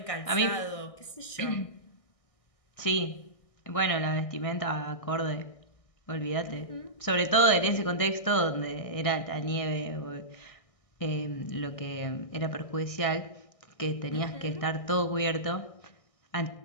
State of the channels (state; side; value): late; right; 1.6 ms